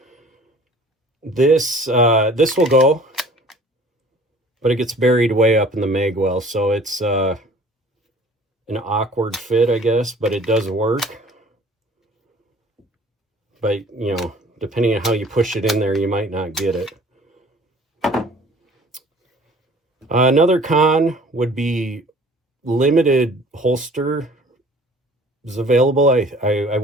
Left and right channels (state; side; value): normal; both; correlation 0.50